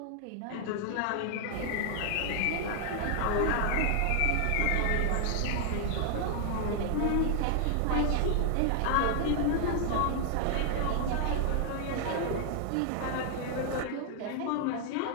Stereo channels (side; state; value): both; different; correlation 0.00